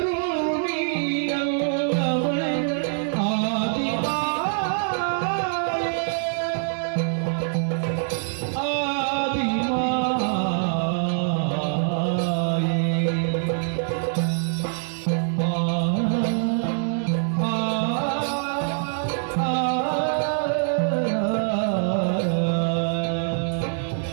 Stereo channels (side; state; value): left; silent; digital silence